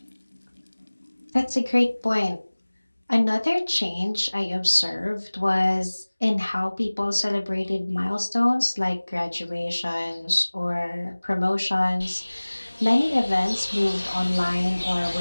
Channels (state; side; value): inverted; both; correlation -1.00